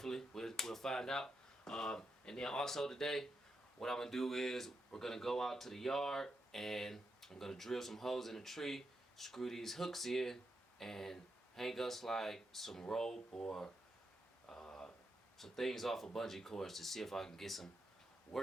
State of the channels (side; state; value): both; normal; correlation 0.84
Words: we'll find out. And then also today, what I'm gonna do is we're gonna go out to the yard and I'm gonna drill some holes in the tree, screw these hooks in, and hang us like some rope or some things off of bungee cords to see if I can get some